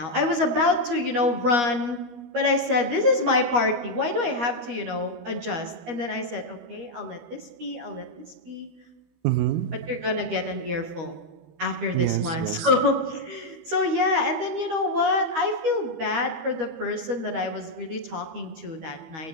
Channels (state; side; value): late; left; 13 ms